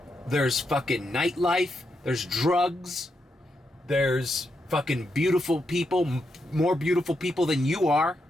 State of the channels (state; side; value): normal; both; correlation 0.83